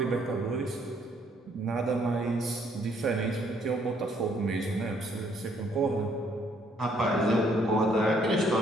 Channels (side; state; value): both; normal; correlation 0.67